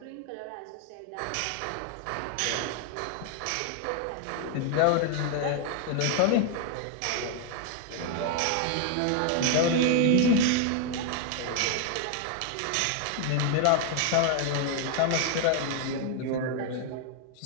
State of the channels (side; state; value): both; different; correlation 0.00